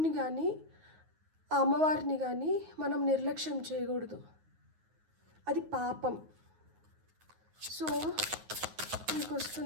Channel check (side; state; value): left; late; 9.5 ms